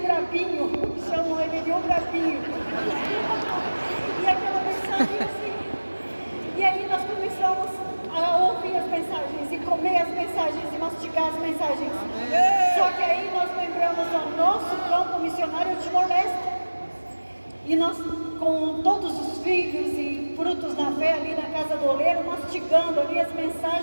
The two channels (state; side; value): inverted; both; correlation -1.00